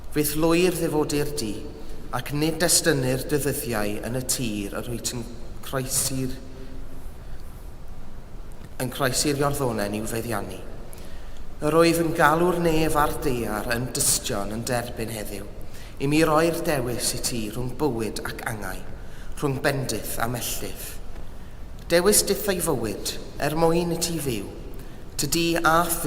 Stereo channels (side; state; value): both; identical; correlation 1.00